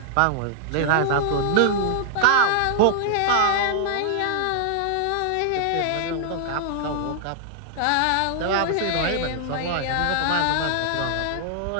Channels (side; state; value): both; different; correlation -0.01